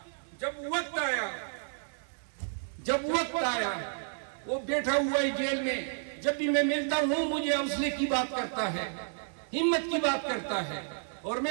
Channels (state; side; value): silent; left; 57 dB below the other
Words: جب وقت آیا وہ بیٹھا ہوا ہے جیل میں، جب بھی میں ملتا ہوں مجھے حوصلے کی بات کرتا ہے، ہمت کی بات کرتا ہے، اور